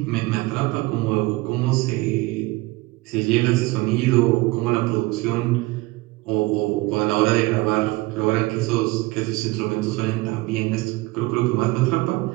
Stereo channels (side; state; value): left; quieter; 21.6 dB